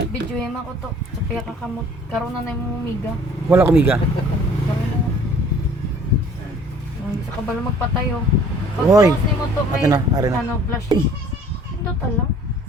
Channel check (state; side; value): normal; both; correlation 0.53